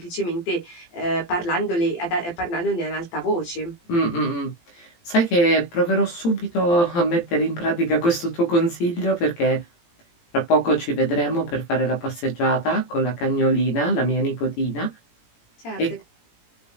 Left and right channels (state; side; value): late; right; 17 ms